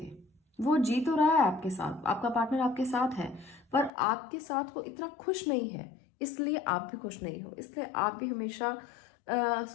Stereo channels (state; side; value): drops out; right; at 3.9 s